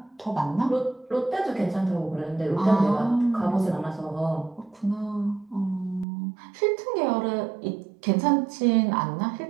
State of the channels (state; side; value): drops out; left; at 6.1 s